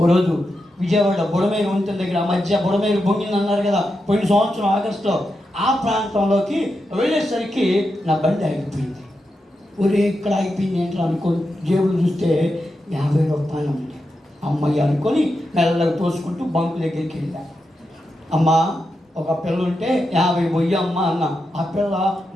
రోజు విజయవాడ బుడమేరు వంతెన దగ్గర ఆ మధ్య బుడమేరు బొంగింది అన్నారు కదా పోయిన సంవత్సరం ఆగస్టులో, ఆ ప్రాంతంలోకి వెళ్ళేసరికి నా బండి ఆగిపోయింది. ఒరే ఇక్కడ ఆగిపోయింది ఏంటో అనుకోని జేబులు చూస్తే 50 రూపాయలు ఉంది. అమ్మయ్య అనుకొని మెల్లగా తోసుకుంటూ బంకు దగ్గరికి వెళ్ళా. అమ్మ ఒక పిల్ల ఉంటే 50 పోయి అమ్మ అన్న. ఆ పిల్ల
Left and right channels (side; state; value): both; normal; correlation 0.87